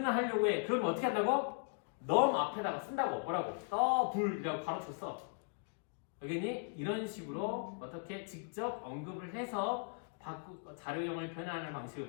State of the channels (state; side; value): silent; right; 52 dB below the other